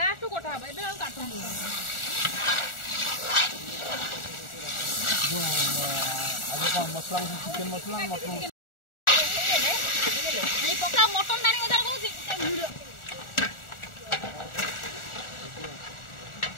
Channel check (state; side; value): late; right; 1.4 ms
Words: कोठा बे हम काटू जो आज का मसला चिकन मसला मटन नहीं पक्का मटन दानी उधर कहूची वीडियो